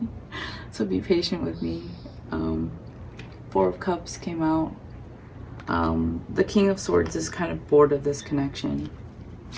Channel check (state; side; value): identical; both; correlation 1.00